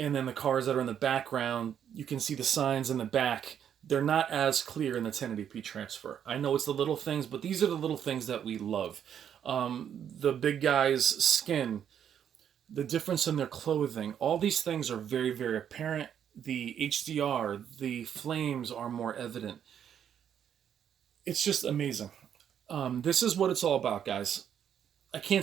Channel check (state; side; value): quieter; left; 9.0 dB